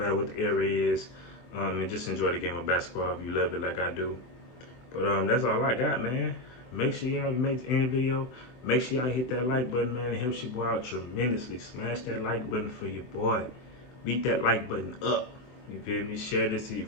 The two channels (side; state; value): right; late; 24 ms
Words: what the era is, and just enjoy the game of basketball if you love it like I do. But that's all I got, man. Make sure y'all make any video. Make sure y'all hit that like button, man. It helps your boy out tremendously. Smash that like button for your boy. Beat that like button up. You feel me? Share this to your